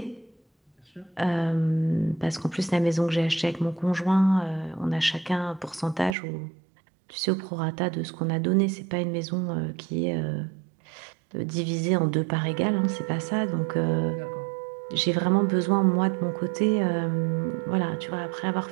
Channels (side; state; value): left; drops out; at 6.2 s